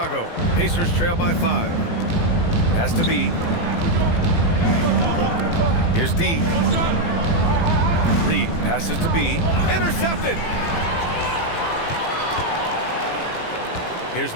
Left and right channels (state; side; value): late; right; 18 ms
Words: Pacers trail by 5. Has to be. Here's D. Reed passes to B. Intercepted. Here's